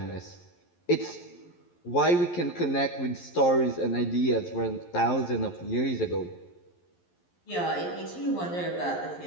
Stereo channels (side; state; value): right; late; 11 ms